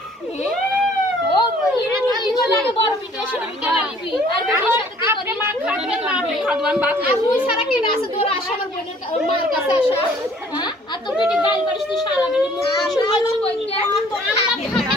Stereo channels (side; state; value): both; normal; correlation 0.57